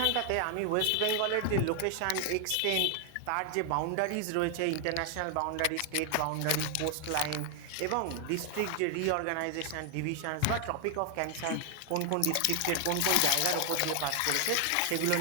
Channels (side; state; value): both; different; correlation 0.00